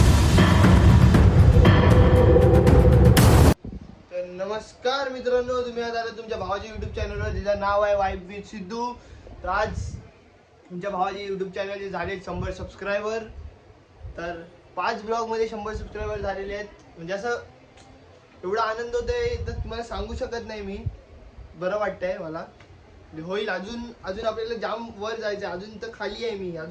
नमस्कार मित्रांनो, तुम्ही आज आला तुमच्या भावाच्या युट्यूब चॅनलवर, ज्याचं नाव आहे वाईब विथ सिद्धू. तर आज तुमच्या भावाचे युट्यूब चॅनलचे झाले 100 सबस्क्रायबर. तर 5 ब्लॉगमध्ये 100 सबस्क्रायबर झालेले आहेत. म्हणजे असं एवढा आनंद होतोय तर तुम्हाला सांगू शकत नाही मी. बरं वाटतंय मला. होईल अजून अजून आपल्याला जाम वर जायचं. अजून तर खाली आहे मी,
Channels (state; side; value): identical; both; correlation 1.00